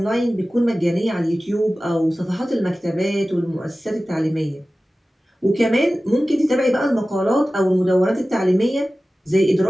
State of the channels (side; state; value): both; normal; correlation 0.96